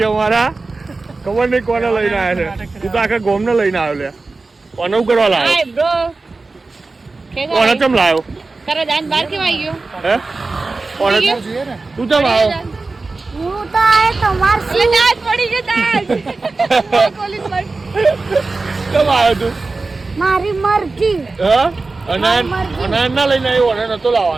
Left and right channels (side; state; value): left; quieter; 3.7 dB